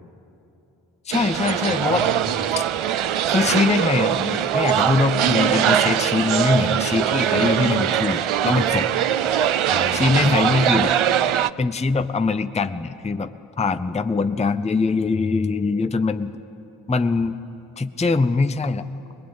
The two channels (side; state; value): both; normal; correlation 0.51